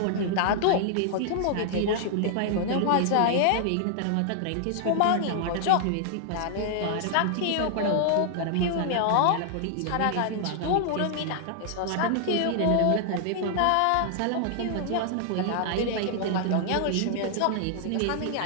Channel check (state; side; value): different; both; correlation -0.01